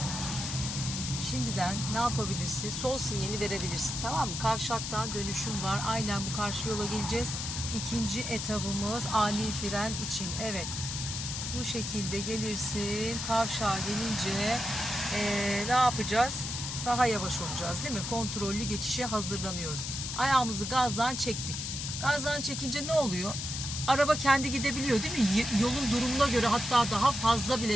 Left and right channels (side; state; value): left; noise; hiss, 5 dB below the sound